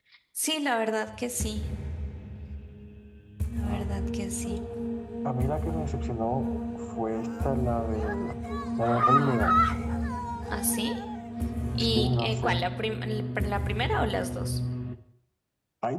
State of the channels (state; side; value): identical; both; correlation 1.00